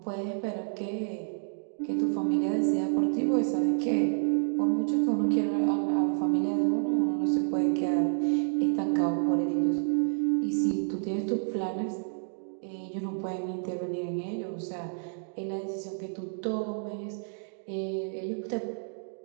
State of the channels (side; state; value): left; silent; digital silence